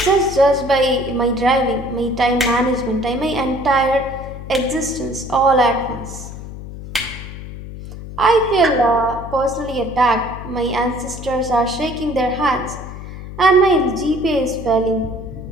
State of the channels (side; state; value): left; noise; hum, 11 dB below the sound